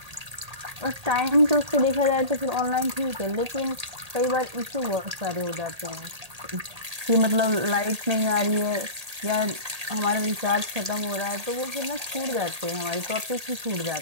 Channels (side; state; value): left; late; 1.8 ms